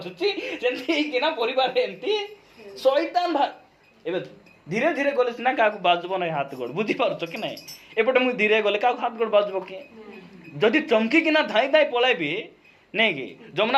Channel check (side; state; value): both; identical; correlation 1.00